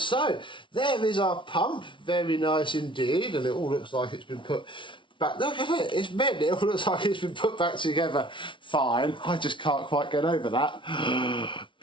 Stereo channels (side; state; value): right; late; 0.24 ms